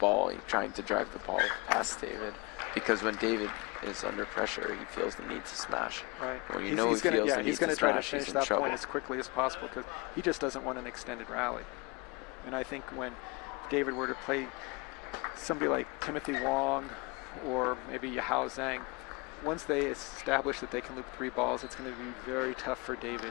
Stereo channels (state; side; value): quieter; right; 27.0 dB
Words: trying to drive the ball past David. Because when David is under pressure, he feels the need to smash. Right. When he's going to try to finish that point as quickly as possible because he just doesn't want an extended rally. And I think when David were to play somebody like Timothy Huang or maybe Hsing, once they establish that they can loop 3 balls, it's going to be very tough for